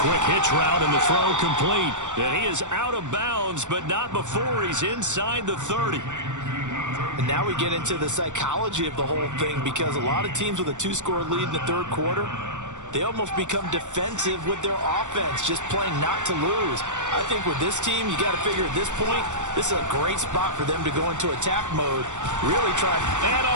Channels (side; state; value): left; late; 0.85 ms